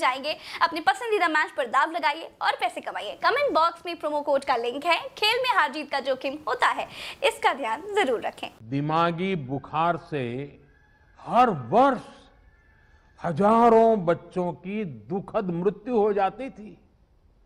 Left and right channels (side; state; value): both; identical; correlation 1.00